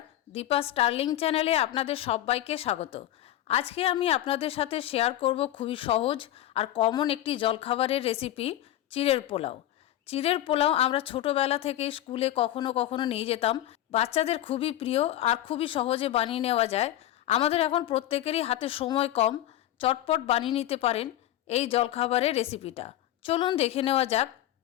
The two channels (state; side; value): quieter; right; 13.4 dB